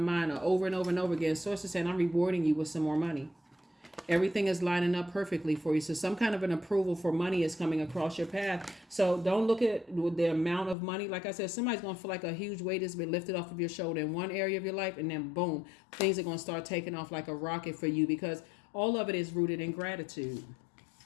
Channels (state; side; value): drops out; right; at 10.8 s